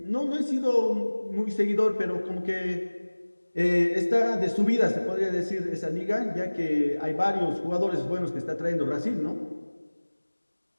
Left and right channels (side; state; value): both; inverted; correlation -1.00